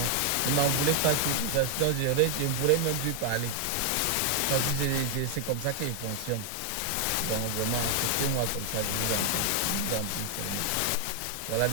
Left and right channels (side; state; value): both; different; correlation 0.00